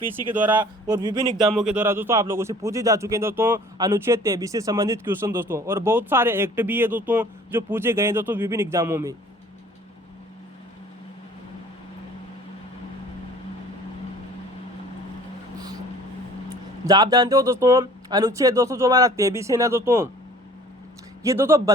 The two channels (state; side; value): normal; both; correlation 0.50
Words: के द्वारा और विभिन्न एग्जामों के द्वारा दोस्तों आप लोगों से पूछे जा चुके हैं दोस्तों अनुच्छेद 23 से संबंधित क्वेश्चन दोस्तों, और बहुत सारे एक्ट भी है दोस्तों जो पूछे गए हैं दोस्तों विभिन्न एग्जामों में। आप जानते हो दोस्तों अनुच्छेद दोस्तों जो हमारा 23 है ना दोस्तों, ये दोस्तों